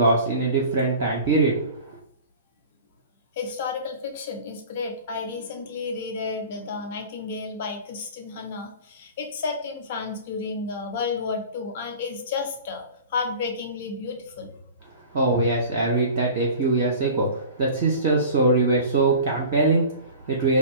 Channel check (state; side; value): inverted; both; correlation -0.39